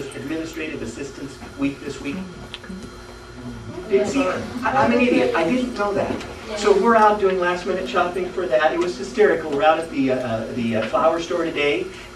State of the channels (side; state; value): both; identical; correlation 1.00